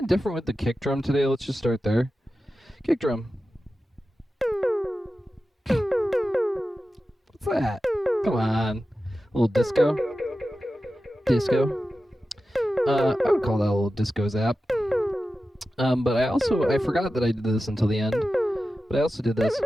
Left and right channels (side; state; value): both; normal; correlation 0.93